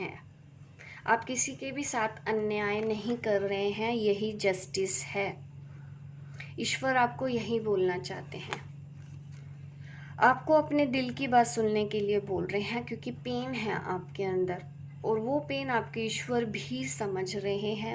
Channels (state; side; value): identical; both; correlation 1.00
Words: आप किसी के भी साथ अन्याय नहीं कर रहे हैं, यही जस्टिस है। ईश्वर आपको यही बोलना चाहते हैं, आपको अपने दिल की बात सुनने के लिए बोल रहे हैं, क्योंकि पेन है आपके अंदर, और वो पेन आपके ईश्वर भी समझ रहे हैं,